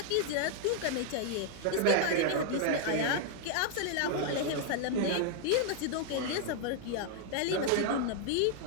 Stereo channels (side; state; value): both; different; correlation 0.00